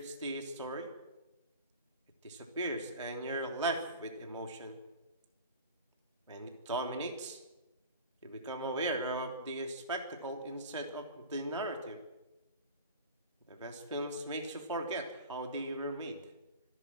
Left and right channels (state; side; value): inverted; both; correlation -0.35